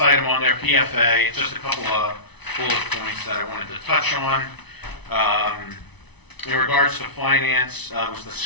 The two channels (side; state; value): right; late; 0.99 ms